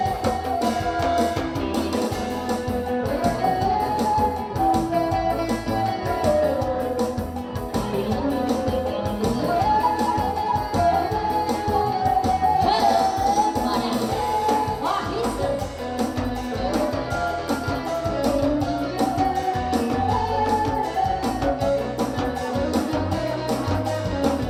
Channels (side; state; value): both; identical; correlation 1.00